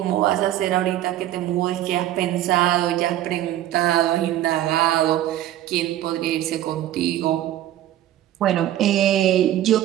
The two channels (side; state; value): left; quieter; 13.0 dB